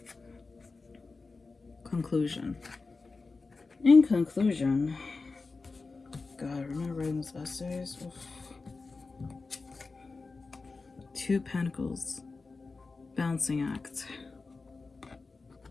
Conclusion. In conclusion, God, remember writing those essays? Oof. Two of Pentacles. Balancing act.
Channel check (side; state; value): right; quieter; 4.0 dB